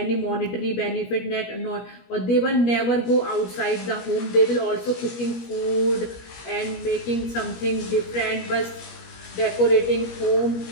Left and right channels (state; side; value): late; right; 17 ms